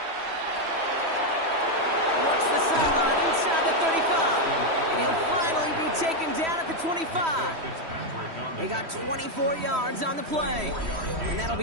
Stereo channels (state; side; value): late; left; 3.1 ms